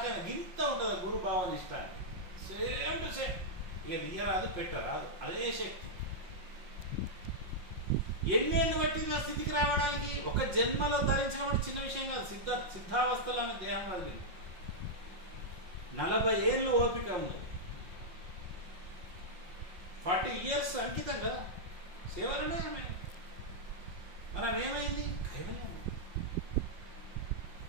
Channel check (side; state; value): left; late; 5.5 ms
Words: అయినా. గింత ఉంటుంది గురు భావన ఇష్టాన్ని. Same to same. ఇక తీయరాదు, పెట్టరాదు, అదే శక్తి. ఎన్నేళ్ళు పట్టింది ఆ స్థితికి రావడానికి? ఒక జన్మలో ధరించడం అంటే చిన్న విషయం కాదు. సిద్ధావస్థలో ఆమె దేహం వదిలింది. 40 ఏళ్ళు ఓపిక ఉన్నది. 40 years అంకితం కదా సేవలనే ఆమె. మనం ఏమైంది? కైవల్యం.